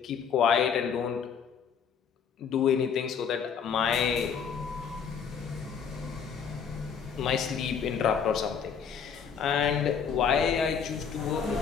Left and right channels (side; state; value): right; quieter; 6.9 dB